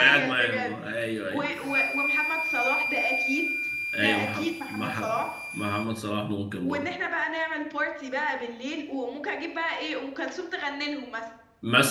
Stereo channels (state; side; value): identical; both; correlation 1.00